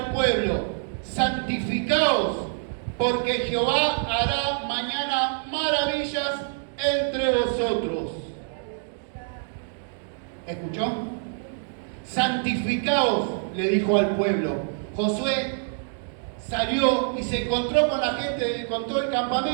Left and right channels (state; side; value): silent; left; digital silence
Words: pueblo, santificaos, porque Jehová hará mañana maravillas entre vosotros. ¿Escuchó? Santificaos, le dijo al pueblo. Josué salió y se encontró con la gente, con todo el